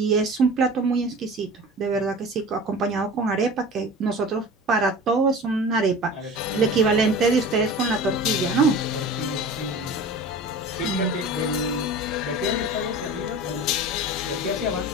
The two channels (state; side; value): normal; both; correlation 0.37